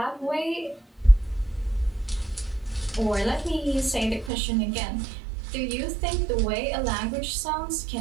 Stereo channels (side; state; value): left; drops out; at 4.3 s